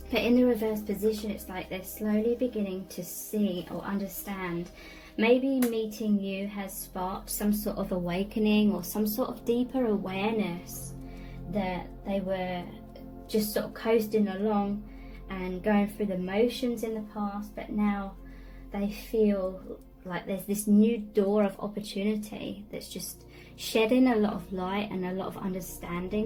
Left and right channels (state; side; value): identical; both; correlation 1.00